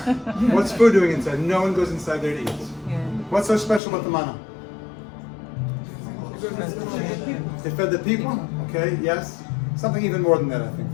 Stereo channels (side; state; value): right; drops out; at 3.8 s